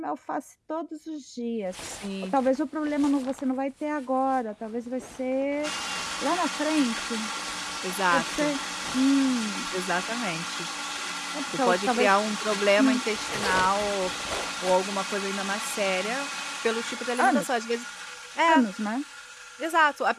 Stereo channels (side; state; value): both; identical; correlation 1.00